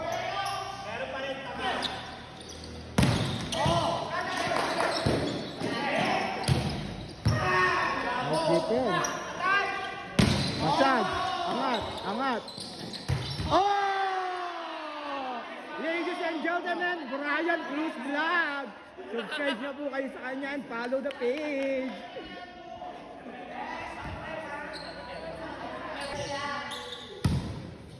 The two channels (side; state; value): both; identical; correlation 1.00